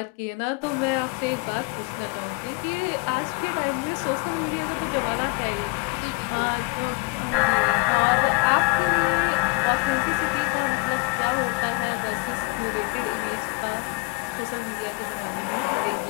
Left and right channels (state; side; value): quieter; right; 25.8 dB